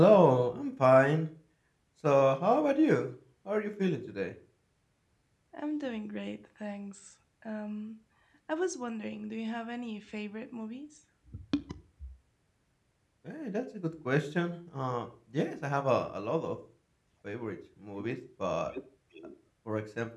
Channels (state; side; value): identical; both; correlation 1.00